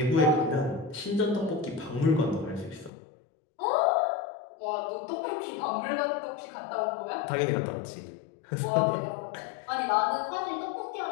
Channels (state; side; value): drops out; right; at 2.9 s